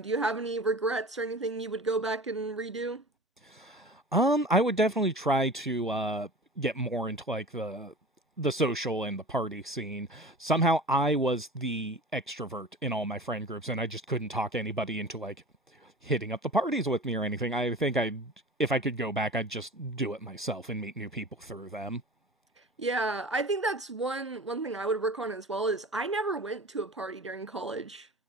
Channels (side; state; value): both; normal; correlation 0.38